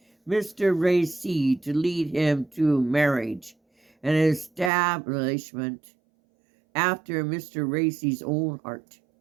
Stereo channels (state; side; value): drops out; left; at 4.7 s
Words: Mr. Racy to lead him to marriage and establishment after Mr. Racy's own heart,